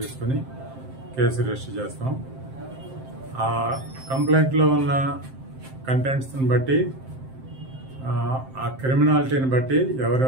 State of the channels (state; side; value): late; left; 7.6 ms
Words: కేసు రిజిస్టర్ చేస్తాం. ఆ కంప్లైంట్లో ఉన్న కంటెంట్స్ని బట్టి ఆ క్రిమినాలిటీని బట్టి